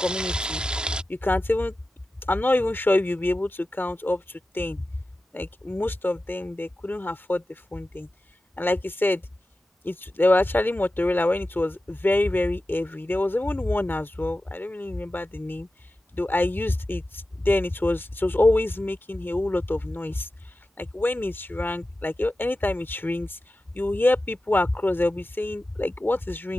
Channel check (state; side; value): normal; both; correlation 0.94